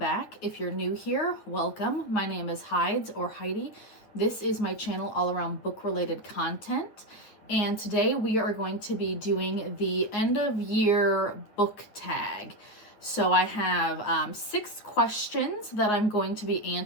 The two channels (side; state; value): right; late; 9.4 ms